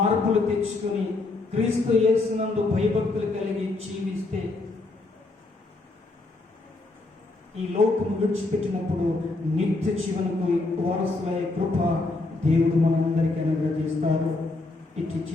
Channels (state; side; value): quieter; right; 3.3 dB